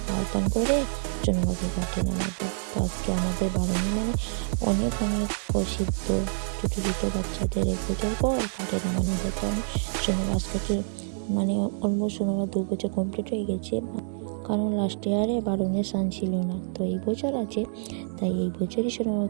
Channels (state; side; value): silent; left; digital silence